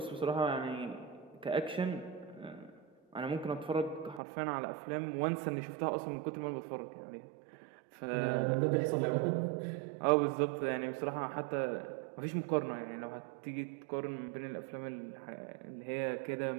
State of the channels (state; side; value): drops out; left; at 4.2 s